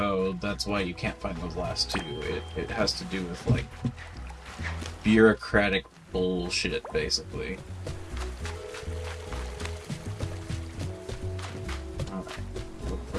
that's why you can't find those last two. It has to do with like bureaucratic bullshit, basically. Alright, look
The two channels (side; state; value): both; identical; correlation 1.00